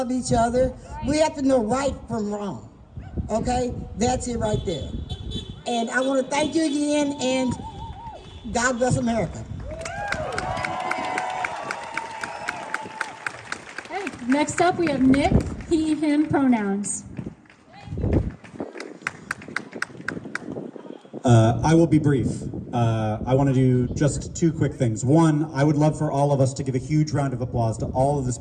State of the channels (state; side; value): identical; both; correlation 1.00